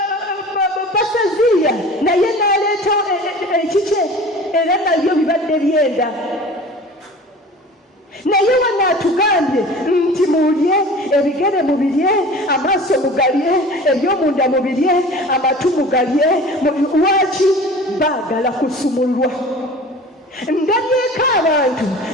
Basaziya naye n'aleeta ekike era nabyo bibadde byenda. Naye wano atugambye nti mulye, ebigere mubirye, amaaso mugalye, ebyomunda mubirye, amatu mugalye. Lwaki? Baagala kusumulwa. Ndabyeko abantu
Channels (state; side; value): normal; both; correlation 0.41